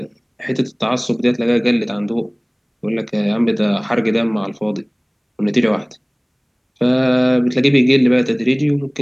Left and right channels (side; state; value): both; identical; correlation 1.00